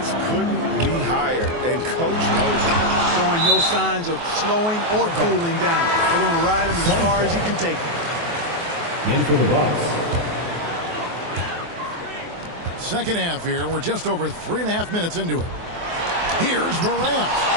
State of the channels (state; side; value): late; left; 24 ms